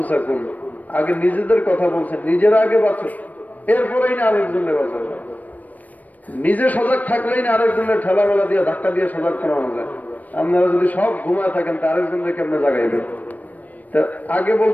আগে নিজেদের কথা বলছেন, নিজেরা আগে বাঁচো, এরপরেই না আরেকজনের বাঁচাও। নিজে সজাগ থাকলেই না আরেকজনের ঠেলা মেলা দিয়ে ধাক্কা দিয়ে সজাগ করানো যায়। আপনারা যদি সব ঘুমায় থাকেন তা আরেকজনের কেমনে জাগাইবেন? তা আগে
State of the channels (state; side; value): late; right; 0.077 ms